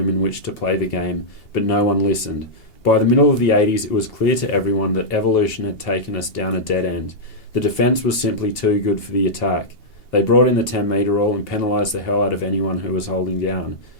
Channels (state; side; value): late; right; 2.8 ms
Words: in which to play the game, but no one listened. By the middle of the 80s, it was clear to everyone that evolution had taken us down a dead end. The defence was simply too good for the attack. They brought in the 10-metre rule and penalised the hell out of anyone who was holding down."